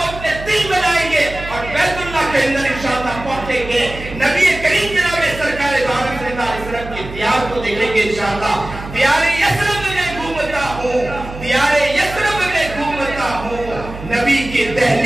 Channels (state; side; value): noise; right; hum, 12 dB below the sound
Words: اپنے دل میں لائیں گے اور بیت اللہ کے اندر انشاءاللہ پہنچیں گے، نبی کریم جناب سرکار دو عالم صلی اللہ علیہ وسلم کی دیار کو دیکھیں گے انشاءاللہ۔ دیار یثرب میں گھومتا ہوں، دیار یثرب میں گھومتا ہوں، نبی کی